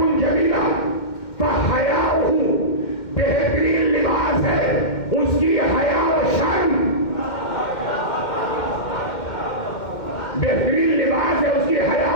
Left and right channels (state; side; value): late; right; 2.1 ms